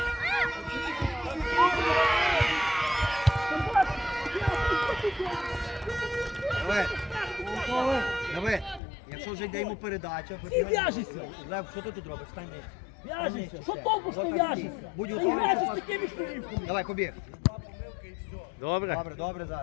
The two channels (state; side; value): drops out; right; at 8.8 s